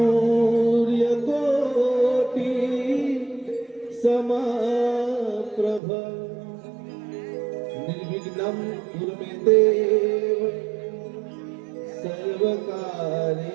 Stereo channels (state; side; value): drops out; left; at 5.8 s